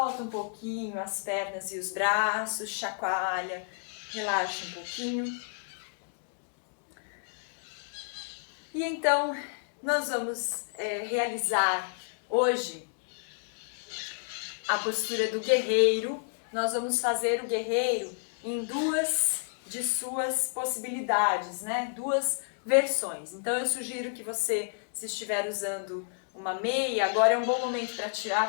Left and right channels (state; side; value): silent; right; digital silence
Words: um pouquinho as pernas e os braços, chacoalha, relaxa um pouquinho. E então, nós vamos realizar hoje a postura do guerreiro. nós vamos fazer o guerreiro em duas de suas possibilidades, né? Duas versões. Então eu sugiro que você, se estiver usando uma meia, agora é um bom momento para tirar,